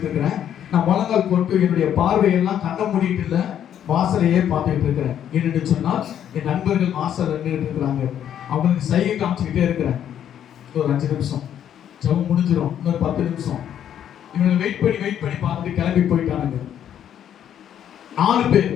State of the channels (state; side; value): quieter; right; 9.9 dB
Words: இருக்கிறேன். நான் முழங்கால் போட்டு என்னுடைய பார்வையெல்லாம் கண்ண மூடிட்டு இல்லை, வாசலையே பார்த்துட்டு இருக்கிறேன். என்னன்னு சொன்னால் என் நண்பர்கள் வாசல் நின்றுட்டு இருக்கிறாங்க. அவங்களுக்கு சைகை காமிச்சுக்கிட்டே இருக்கிறேன். ஒரு 5 நிமிஷம் ஜெபம் முடிஞ்சிடும், இன்னொரு 10 நிமிஷம். இவங்க வெயிட் பண்ணி பார்த்துட்டு கிளம்பி போயிட்டானுங்க. 4 பேர்